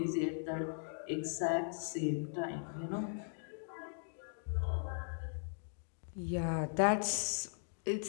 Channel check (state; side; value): silent; right; digital silence